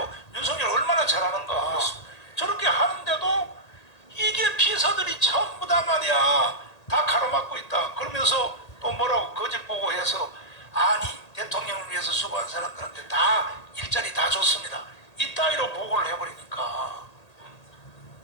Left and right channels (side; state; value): right; late; 1.8 ms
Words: 윤석열 얼마나 잘하는가. 저렇게 하는데도 이게 비서들이 전부 다 말이야 다 가로막고 있다. 그러면서 또 뭐라고 거짓 보고해서 아니 대통령을 위해서 수고한 사람들한테 다 일자리 다 줬습니다. 이따위로 보고를 해버리니까